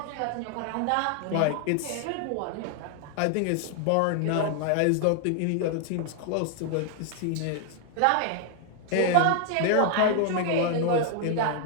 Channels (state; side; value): different; both; correlation 0.00